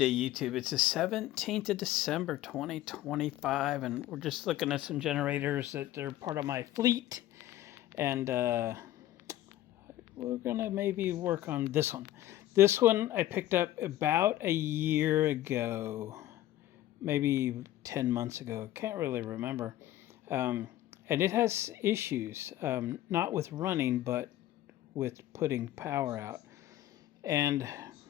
YouTube. It's the 17th of December, 2025, and we're just looking at some generators that are part of my fleet. And we're going to maybe work on this one. This one I picked up about a year ago, maybe 10 months ago. Can't really remember. And it has issues, not with running, but with putting power out. And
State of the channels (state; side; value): quieter; right; 14.2 dB